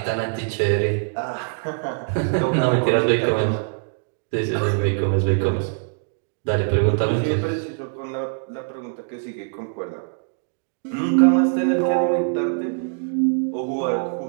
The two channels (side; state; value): left; silent; digital silence